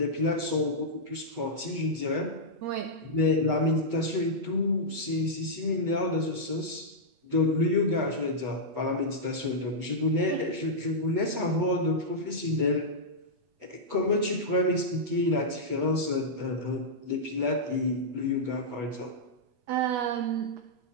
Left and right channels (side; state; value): left; late; 8.1 ms